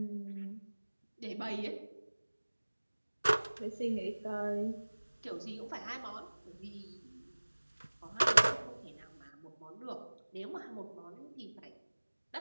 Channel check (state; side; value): inverted; both; correlation -1.00